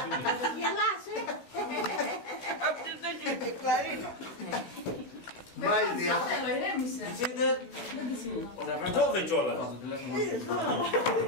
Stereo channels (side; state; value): right; late; 16 ms